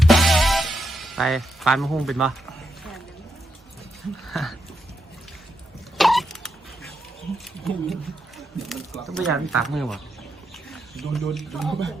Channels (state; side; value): normal; both; correlation 0.83